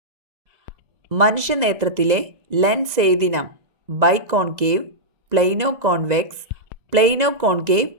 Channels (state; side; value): late; left; 2.0 ms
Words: മനുഷ്യനേത്രത്തിലെ ലെൻസ് ഏതിനം? Biconcave, plano convex, plano concave,